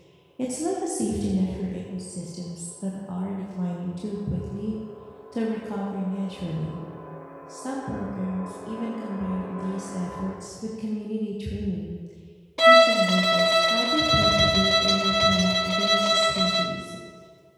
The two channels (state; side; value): identical; both; correlation 1.00